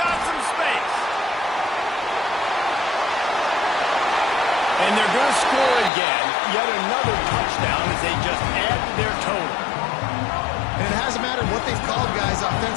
some space. And they're going to score again. Yet another touchdown as they just add to their total. And it hasn't mattered what they've called, guys,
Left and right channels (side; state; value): right; drops out; at 5.9 s